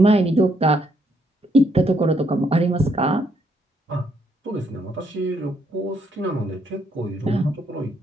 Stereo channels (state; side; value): normal; both; correlation 0.73